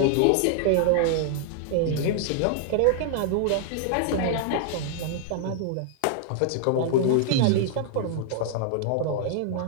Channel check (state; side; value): different; both; correlation -0.01